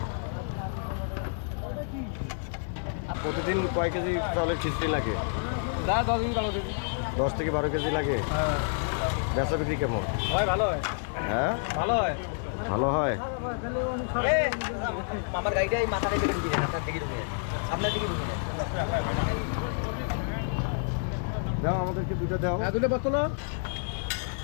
প্রতিদিন কয় কেজি চাউলের খিচুড়ি লাগে? 10 দিন ভালো দিন। 10 থেকে 12 কেজি লাগে। হ্যাঁ, বেচা বিক্রি কেমন? হয় ভালো হয়। হ্যাঁ ভালো হয়। ভালো হয়। মামার গাড়িটা এই মাথাটা কেটে দিবেন, আপনার দিকে ঢুকে। আপনার দিকে ঢুকে। দাও আমাদেরকে দুটো দাও। হ্যাঁ, দুটো বোতল।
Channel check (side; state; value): right; silent; digital silence